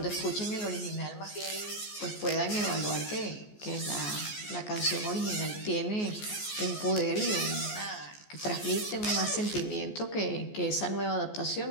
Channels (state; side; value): late; right; 14 ms